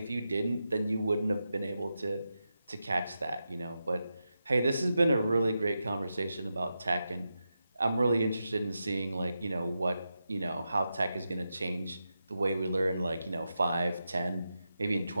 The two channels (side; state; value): both; inverted; correlation -0.89